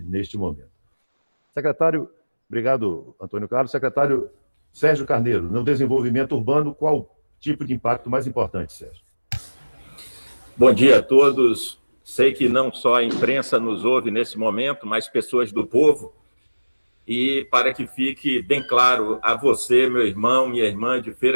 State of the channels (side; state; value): both; inverted; correlation -1.00